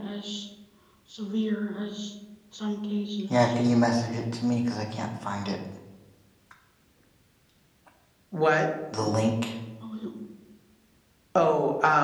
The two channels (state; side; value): identical; both; correlation 1.00